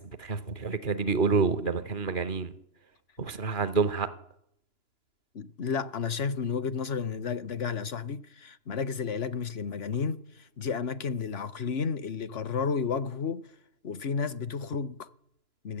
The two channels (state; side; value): late; right; 2.9 ms